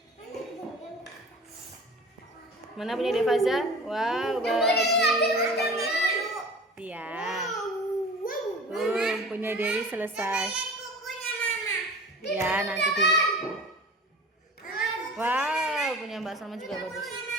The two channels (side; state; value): both; normal; correlation 0.39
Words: Mana punya Devaza? Wow, bagus. Iya. Punya Dewi selesai. Ya, nanti dulu. Wow, punya Mbak Salma juga bagus.